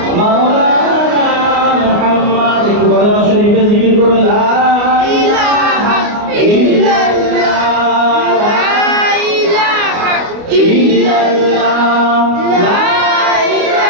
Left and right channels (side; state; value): left; late; 29 ms